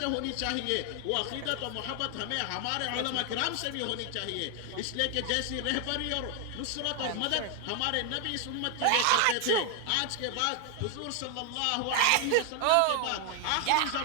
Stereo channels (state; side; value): different; both; correlation 0.00